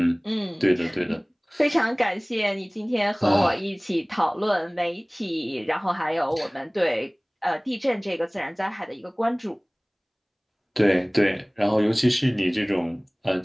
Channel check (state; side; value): identical; both; correlation 1.00